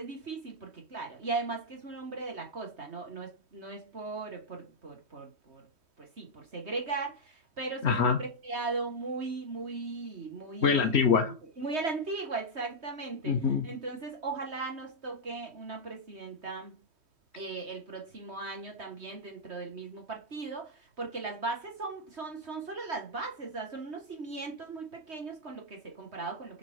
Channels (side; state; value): left; late; 3.2 ms